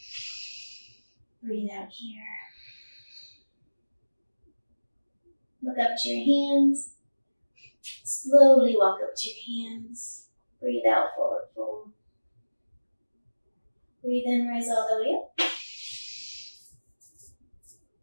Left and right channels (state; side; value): inverted; both; correlation -1.00